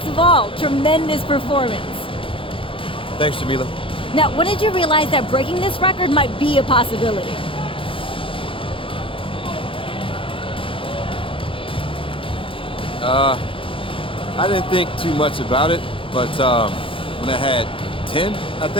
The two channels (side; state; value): right; late; 0.25 ms